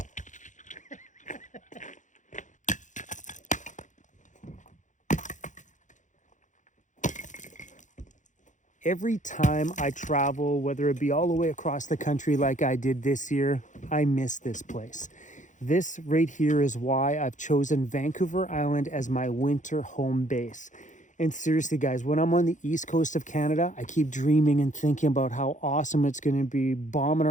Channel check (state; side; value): late; right; 0.36 ms